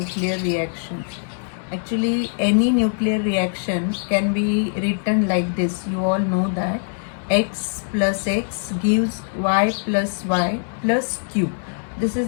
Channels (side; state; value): right; silent; digital silence